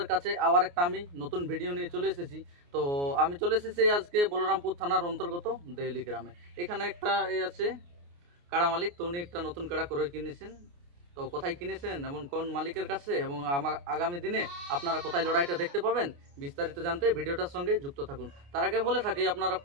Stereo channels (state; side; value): late; left; 29 ms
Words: কাছে আবার একটা আমি নতুন ভিডিও নিয়ে চলে এসেছি। তো আমি চলে এসেছি আজকে বলরামপুর থানার অন্তর্গত দেউলি গ্রামে। এখানে একটা আছে কাড়া মালিক, তো উনি একটা নতুন কাড়া করে কিনেছেন। তো কোথায় কিনেছেন এবং কোন মালিকের কাছে, এবং আগামী দিনে আপনারা কোথায় লড়াইটা দেখতে পাবেন, বিস্তারিত জানতে ভিডিওটার সঙ্গে যুক্ত থাকুন। তার আগে বলে থাকি, আপনারা